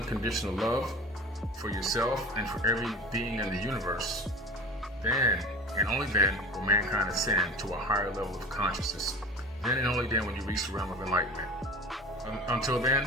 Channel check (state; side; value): normal; both; correlation 0.36